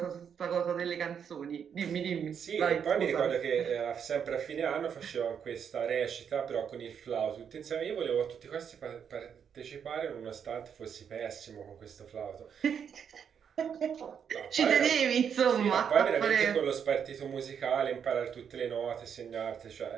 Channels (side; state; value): left; quieter; 7.6 dB